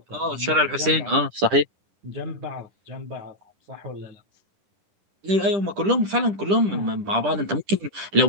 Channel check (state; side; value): late; left; 10 ms